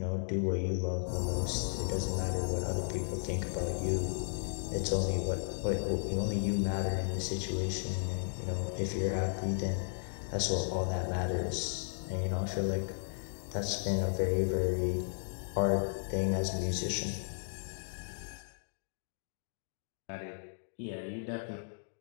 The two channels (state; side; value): silent; right; digital silence